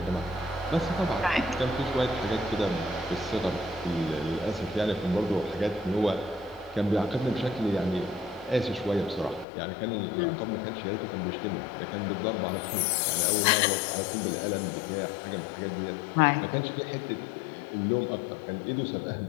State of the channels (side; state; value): right; drops out; at 9.5 s